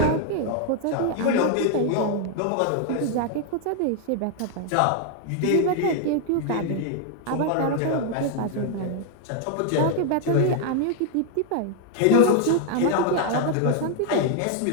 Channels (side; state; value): both; different; correlation 0.00